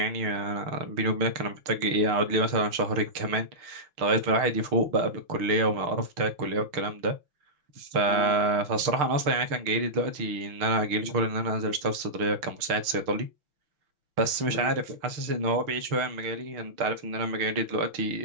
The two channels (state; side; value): late; left; 6.6 ms